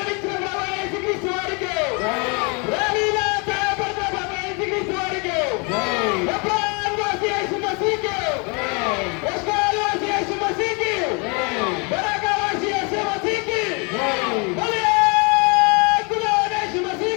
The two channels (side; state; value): right; quieter; 32.5 dB